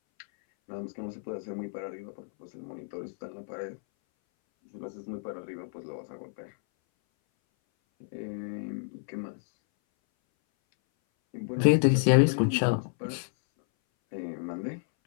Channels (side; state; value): right; silent; 58 dB below the other